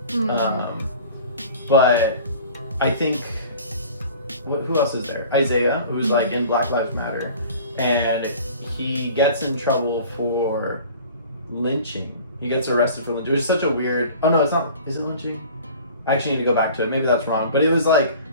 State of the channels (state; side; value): inverted; both; correlation -0.44